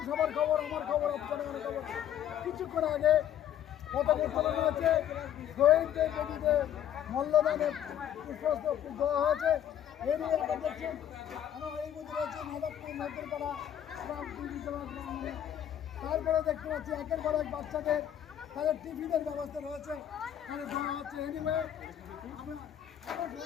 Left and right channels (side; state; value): right; quieter; 10.4 dB